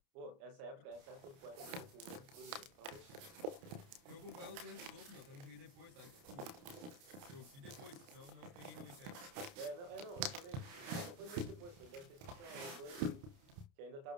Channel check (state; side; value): late; left; 29 ms